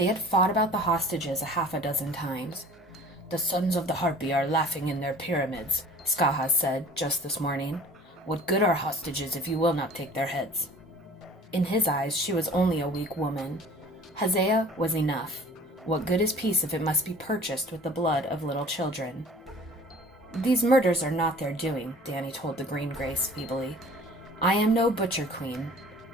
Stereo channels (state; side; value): normal; both; correlation 0.47